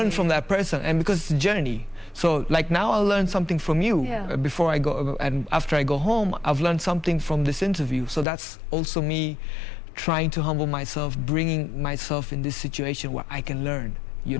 from that person. And because it's a journey. So like now I'll learn something from you. Yeah. Before I go, and after I go home, I've learned something from this interview. So that's also me trying to humble myself, bringing myself in this situation where I can learn, you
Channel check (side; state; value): right; drops out; at 8.2 s